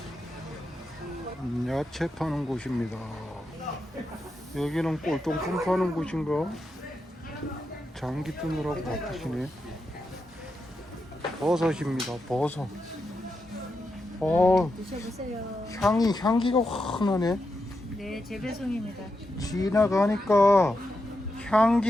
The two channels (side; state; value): both; normal; correlation 0.86